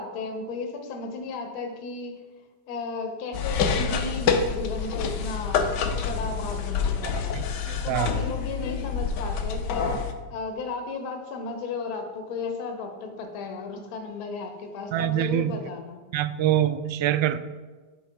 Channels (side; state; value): right; late; 5.2 ms